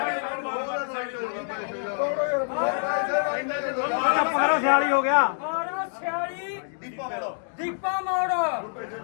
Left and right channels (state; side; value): silent; right; 61 dB below the other